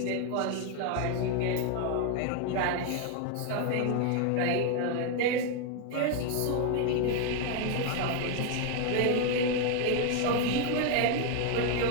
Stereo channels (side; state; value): both; different; correlation 0.00